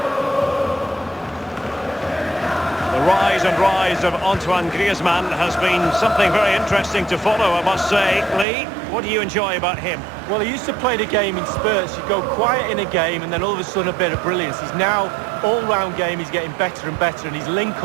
Rise of Antoine Griezmann has been something very interesting to follow, I must say. Lee, what do you enjoy about him? Well, he used to play the game in spurts. You go quiet in a game and then all of a sudden a bit of brilliance. He's now, all-round game, he's getting better and better, and his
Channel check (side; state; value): left; drops out; at 8.5 s